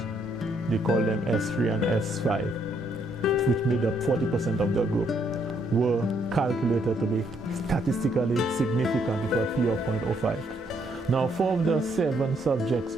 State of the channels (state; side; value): normal; both; correlation 0.72